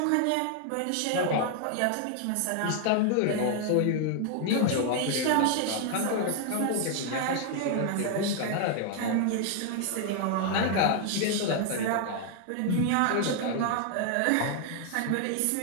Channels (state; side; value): different; both; correlation 0.00